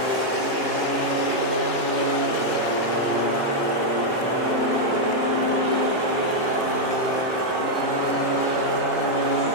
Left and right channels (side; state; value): right; late; 3.2 ms